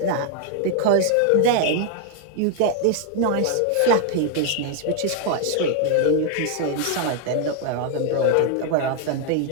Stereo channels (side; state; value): both; different; correlation 0.00